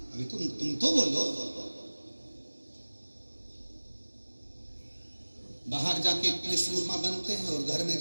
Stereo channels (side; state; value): both; inverted; correlation -1.00